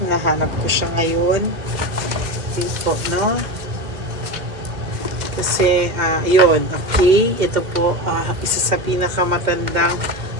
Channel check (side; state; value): left; late; 2.1 ms